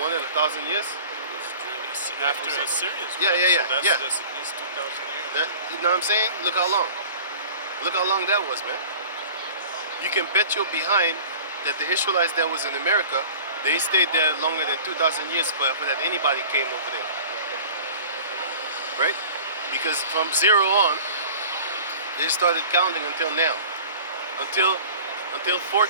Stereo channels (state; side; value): inverted; both; correlation -0.43